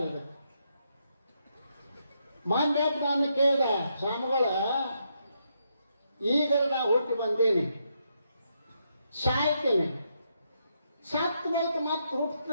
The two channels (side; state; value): both; inverted; correlation -0.79